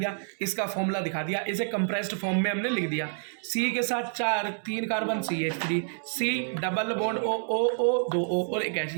इसका फॉर्मूला दिखा दिया, इसे कंप्रेस्ड फॉर्म में हमने लिख दिया। सी के साथ 3 carbon CH3, C double bond O 2 O और एक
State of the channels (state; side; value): silent; left; 59 dB below the other